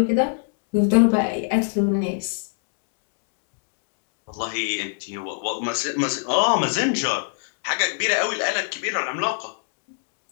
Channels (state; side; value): silent; right; 63 dB below the other